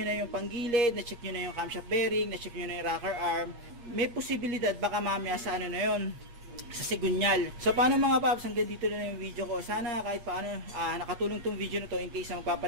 na yung panggilid, na-check nyo na yung camshaft bearing, na-check nyo na yung rocker arm, may posibilidad baka mamaya sa na yun, sa sigunyal. So paano mga paps, hanggang dito na yung video ko. Sana kahit paano nakatulong tong video na to in case na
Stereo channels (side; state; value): left; late; 8.5 ms